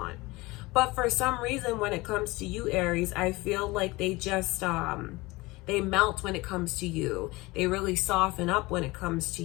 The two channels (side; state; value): right; quieter; 22.1 dB